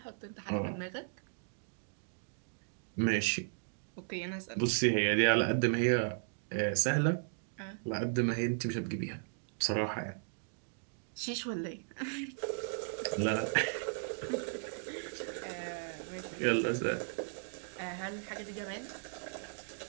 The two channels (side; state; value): left; silent; digital silence